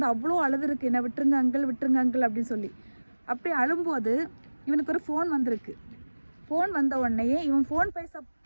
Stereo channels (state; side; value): inverted; both; correlation -1.00